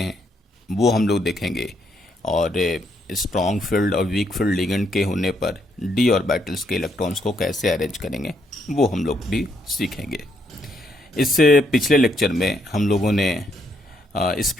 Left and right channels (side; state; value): both; normal; correlation 0.74